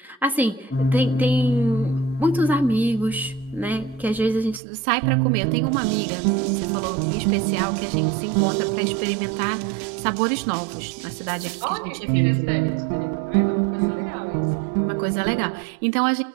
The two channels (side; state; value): left; drops out; at 4.6 s